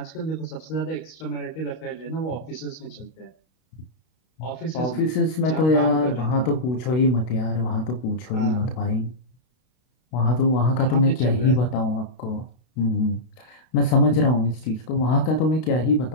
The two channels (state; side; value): late; right; 32 ms